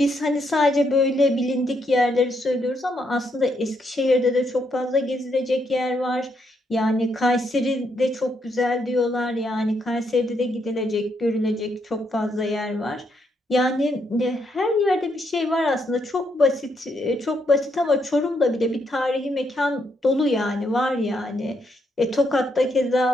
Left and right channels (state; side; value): normal; both; correlation 0.77